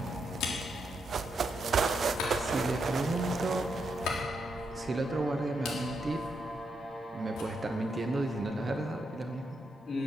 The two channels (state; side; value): normal; both; correlation 0.82